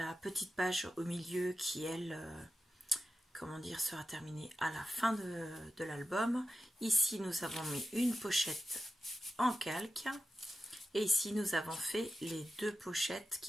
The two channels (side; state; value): both; normal; correlation 0.92